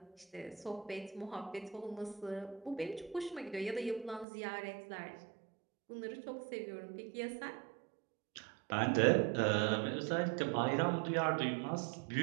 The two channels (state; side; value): drops out; left; at 4.2 s